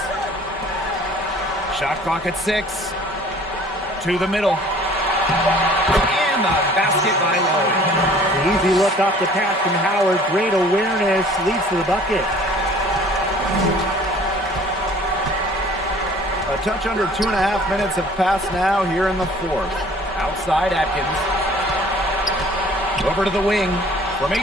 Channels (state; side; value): normal; both; correlation 0.51